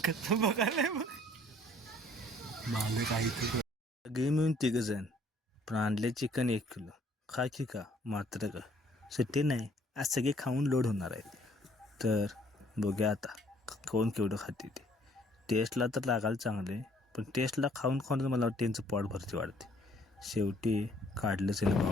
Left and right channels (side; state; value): both; normal; correlation 0.60